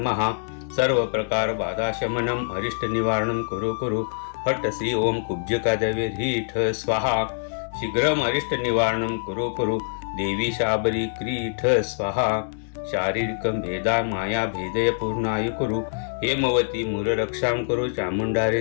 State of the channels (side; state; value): right; silent; digital silence